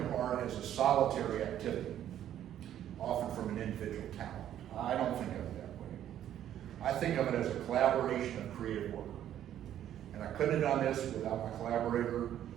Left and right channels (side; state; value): left; quieter; 11.1 dB